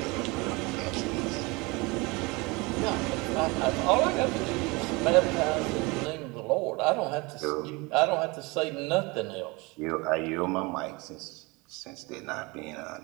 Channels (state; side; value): quieter; left; 25.6 dB